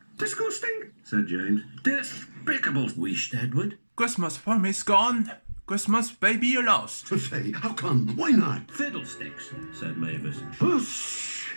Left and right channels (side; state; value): both; inverted; correlation -1.00